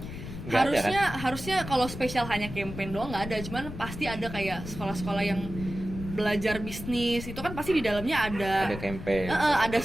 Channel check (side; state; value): left; noise; rumble, 10 dB below the sound